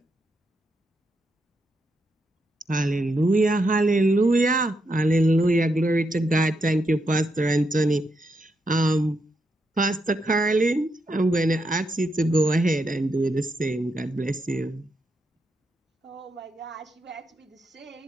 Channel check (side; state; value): both; normal; correlation 0.82